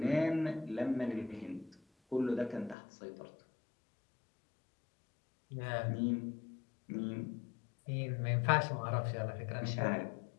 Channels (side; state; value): right; drops out; at 2.8 s